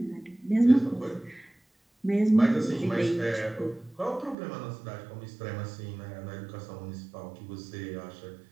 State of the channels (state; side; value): drops out; left; at 4.4 s